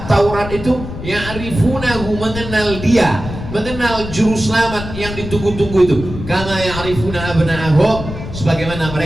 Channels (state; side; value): noise; left; rumble, 9 dB below the sound